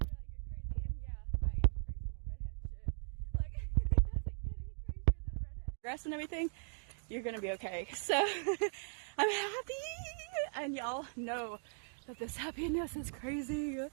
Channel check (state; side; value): silent; left; digital silence